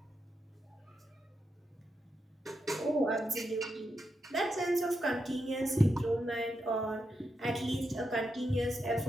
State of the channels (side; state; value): both; normal; correlation 0.85